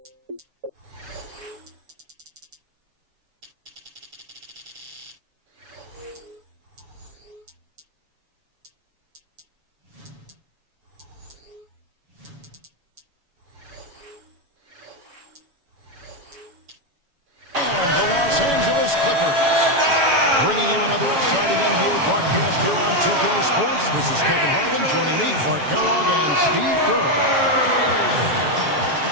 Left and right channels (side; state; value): left; late; 7.0 ms